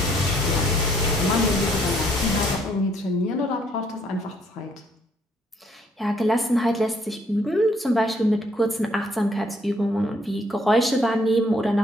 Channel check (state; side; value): normal; both; correlation 0.67